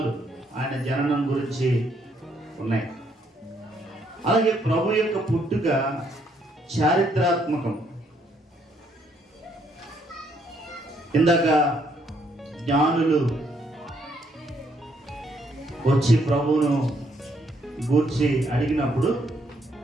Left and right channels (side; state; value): both; normal; correlation 0.71